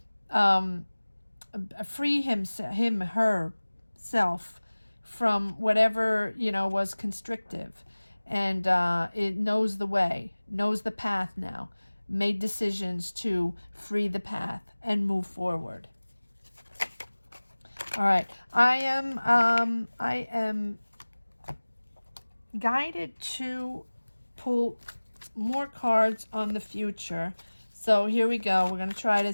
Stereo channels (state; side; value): inverted; both; correlation -1.00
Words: free herself from whatever, you know, was constrictive. And it knows the way, knows the path now. Made decisions to free the path and move forward. All right, I am guided to pull more cards on the future. So here we go. We're going to try to